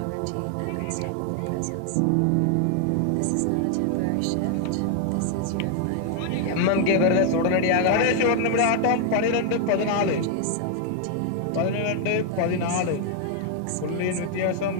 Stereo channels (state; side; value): different; both; correlation 0.00